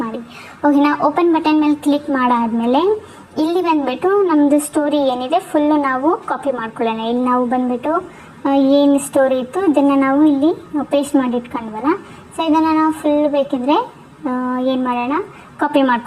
ಮಾಡಿ. ಓಕೆನಾ. ಓಪನ್ ಬಟನ್ ಮೇಲೆ ಕ್ಲಿಕ್ ಮಾಡಾದ್ಮೇಲೆ ಇಲ್ಲಿ ಬಂದುಬಿಟ್ಟು ನಮ್ಮದು ಸ್ಟೋರಿ ಏನಿದೆ ಫುಲ್ಲು ನಾವು ಕಾಪಿ ಮಾಡ್ಕೊಳ್ಳೋಣ. ಇಲ್ಲಿ ನಾವು ಬಂದುಬಿಟ್ಟು ಏನು ಸ್ಟೋರಿ ಇತ್ತು ಇದನ್ನು ನಾವು ಇಲ್ಲಿ ಪೇಸ್ಟ್ ಮಾಡಿ ಇಟ್ಕೊಂಡ್ವಲ್ಲ. ಸೊ ಇದನ್ನು ನಾವು ಫುಲ್ ಬೇಕಿದ್ರೆ ಏನು ಮಾಡೋಣ, ಕಾಪಿ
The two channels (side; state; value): both; identical; correlation 1.00